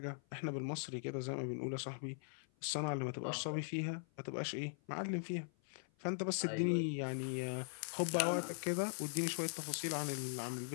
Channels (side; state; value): right; silent; 51 dB below the other